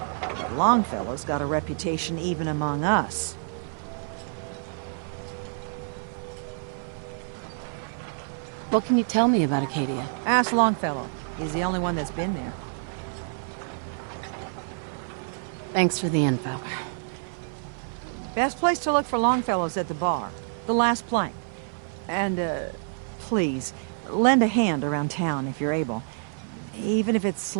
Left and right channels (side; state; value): left; silent; 56 dB below the other